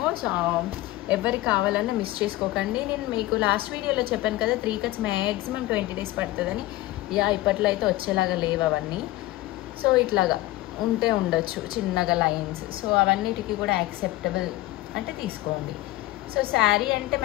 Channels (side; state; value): right; quieter; 17.4 dB